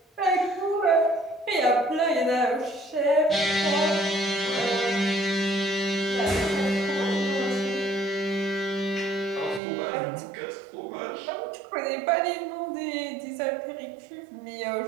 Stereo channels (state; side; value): drops out; left; at 9.6 s